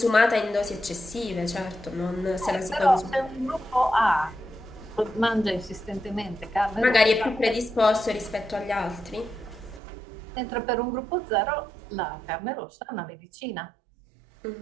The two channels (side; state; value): left; drops out; at 9.8 s